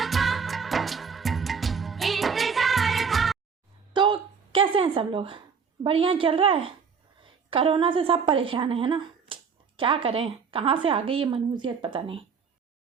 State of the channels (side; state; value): left; quieter; 6.0 dB